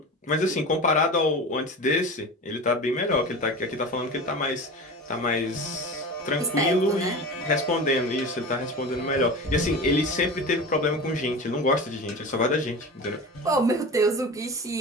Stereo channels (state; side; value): normal; both; correlation 0.31